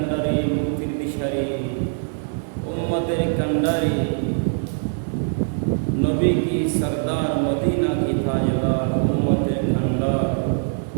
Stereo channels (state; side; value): silent; left; digital silence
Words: মুক্তির দিশারি উম্মতের কান্ডারি নবী কি সরদার মদিনা কি তাজদার উম্মতের কান্ডার